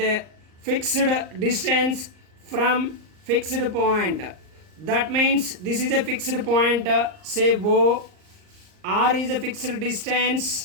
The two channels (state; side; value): late; left; 38 ms